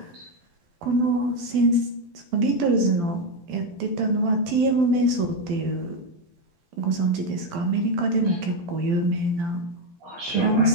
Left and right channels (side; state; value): left; late; 12 ms